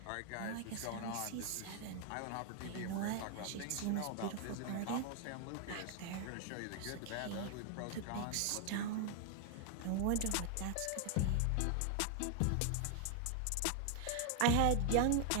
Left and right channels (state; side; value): different; both; correlation 0.00